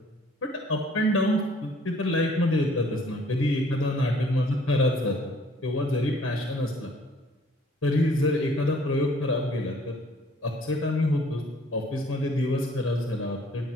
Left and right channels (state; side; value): normal; both; correlation 0.58